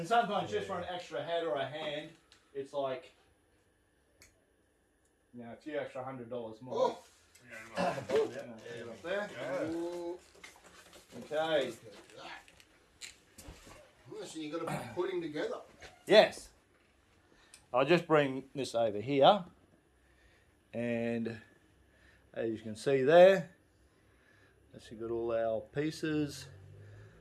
sometimes just for an extra head or a hand, it's like, you know, a few extra $100 more. Oh. Yeah, up there. Ooh, Okay. look at that. Oh, so you've got to be putting together. Yes. I'll just bring this over here. And as you can see there, that's got all our pieces.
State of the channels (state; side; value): identical; both; correlation 1.00